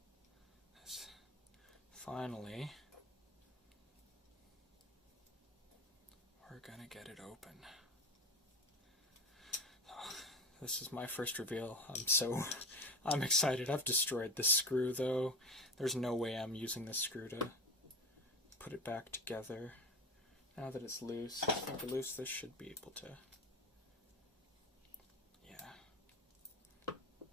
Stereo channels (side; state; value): both; normal; correlation 0.27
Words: we're gonna get it open. This is my first reveal. I'm excited. I've destroyed this screw though. There's no way I'm using this screw to put it back together. Now that it's loose, it's finger loose, this should be able to. Yeah.